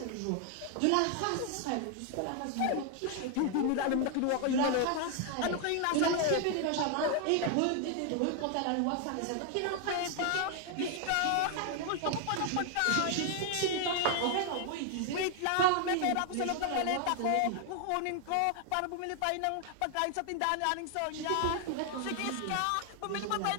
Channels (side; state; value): both; different; correlation 0.00